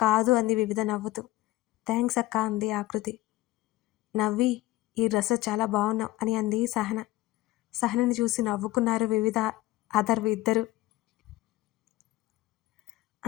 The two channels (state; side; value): quieter; right; 17.7 dB